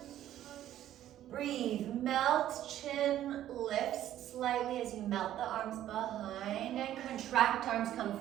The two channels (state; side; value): quieter; left; 12.3 dB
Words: Breathe, melt, chin lifts slightly as you melt the arms behind and contract, arms come